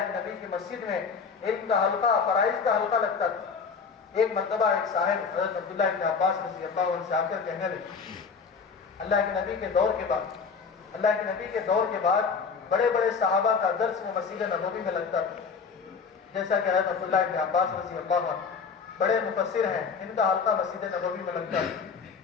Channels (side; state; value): right; quieter; 5.5 dB